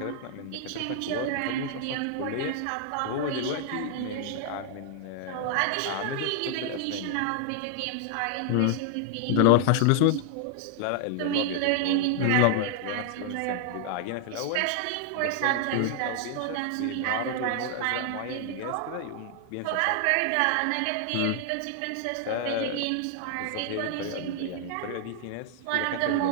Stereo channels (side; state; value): both; different; correlation 0.00